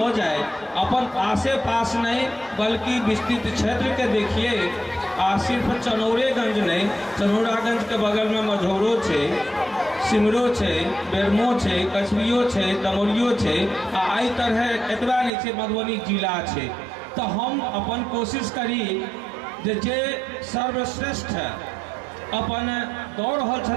जाए, अपन आसे पास नहीं बल्कि विस्तृत क्षेत्र के देखिए। आ सिर्फ चनौरेगंज नहीं, चनौरागंज के बगल में मझौरो छे, सिमरो छे, बेरमो छे, कछवियो छे, दमोरियो छे, आ आई तरह एतबा नहीं छे मधुबनी जिला छे। तो हम अपन कोशिश करी जे सर्वश्रेष्ठ अपन दौड़ रहल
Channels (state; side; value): drops out; left; at 15.3 s